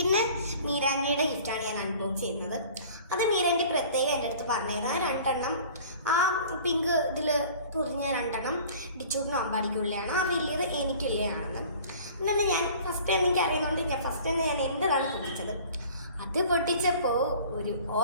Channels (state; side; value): inverted; both; correlation -0.46